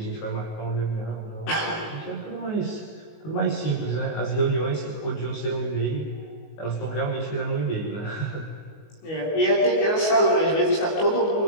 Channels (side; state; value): right; late; 19 ms